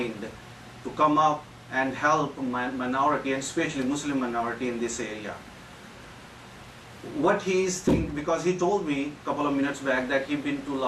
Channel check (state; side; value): identical; both; correlation 1.00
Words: to come up and help minority, and especially Muslim minority in this area. What he is thinking, because he told me a couple of minutes back that he's been to a